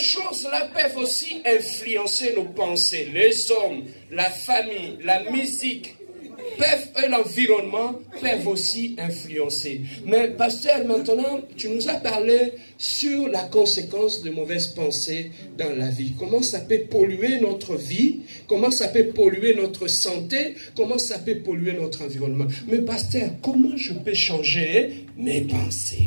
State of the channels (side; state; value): both; inverted; correlation -1.00